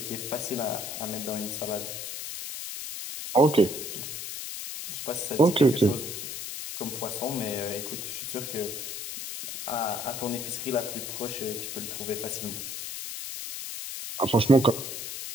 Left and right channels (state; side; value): noise; left; hiss, 6 dB below the sound